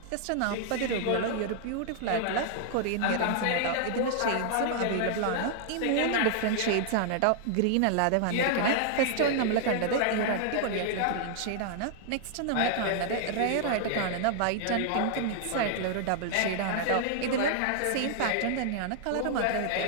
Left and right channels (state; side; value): different; both; correlation -0.01